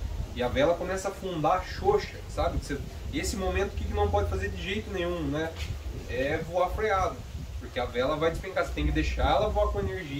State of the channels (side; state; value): both; identical; correlation 1.00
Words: E a vela começa a afundar xoxa, sabe? Esse momento, o que não pode fazer de jeito nenhum, né? É voar freado, porque a vela vai despencar, você tem que deixar ela voar com